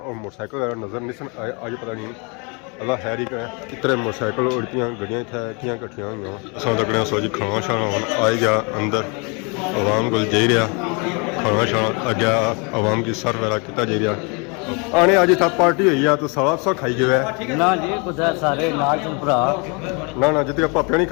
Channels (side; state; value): right; quieter; 32.4 dB